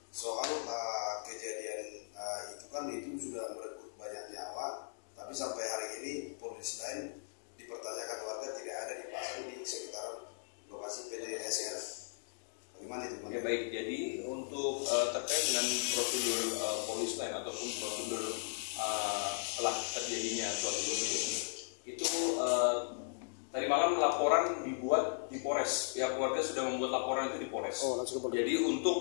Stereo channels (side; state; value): right; silent; digital silence